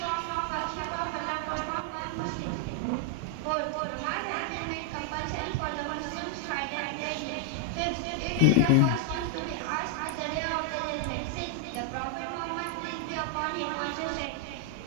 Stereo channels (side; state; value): both; different; correlation 0.00